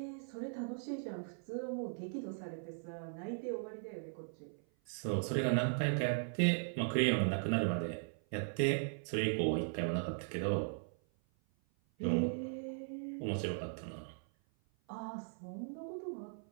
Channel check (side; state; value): left; silent; 52 dB below the other